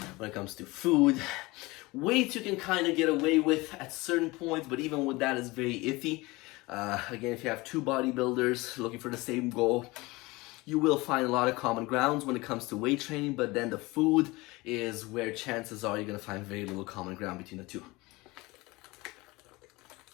When it comes to food, weights you can kind of get away with at certain points, but even with that is very iffy. Again, if you have two bodybuilders looking for the same goal, you will find a lot of common grounds when it comes to weight training, but then the food is where chances are you're going to find very little common ground between the two.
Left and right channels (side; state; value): right; quieter; 22.4 dB